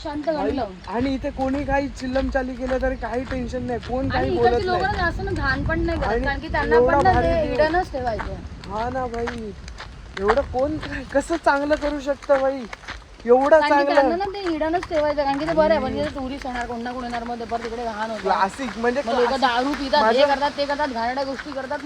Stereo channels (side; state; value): both; identical; correlation 1.00